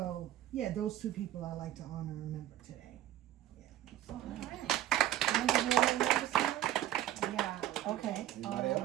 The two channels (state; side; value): quieter; left; 12.9 dB